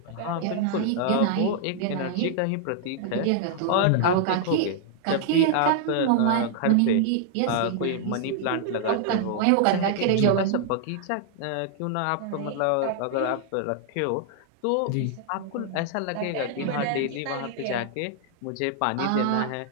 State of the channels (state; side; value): different; both; correlation -0.01